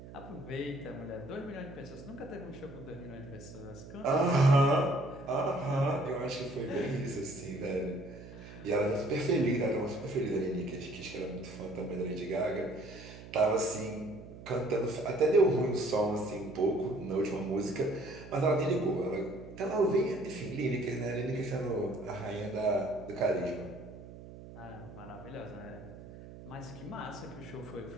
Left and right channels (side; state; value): right; noise; hum, 15 dB below the sound